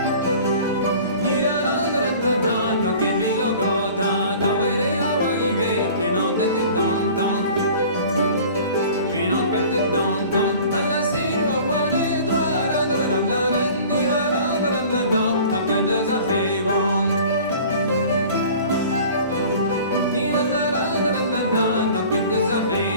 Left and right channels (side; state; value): both; inverted; correlation -0.45